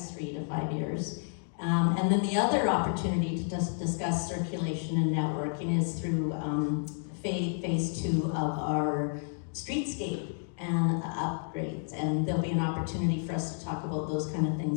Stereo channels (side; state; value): right; silent; digital silence